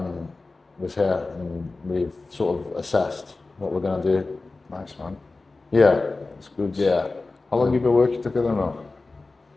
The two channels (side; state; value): right; quieter; 3.5 dB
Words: was here, and we've sort of assessed what we're going to do. Nice, man. Yeah, It's good. yeah. How long have you been working together now?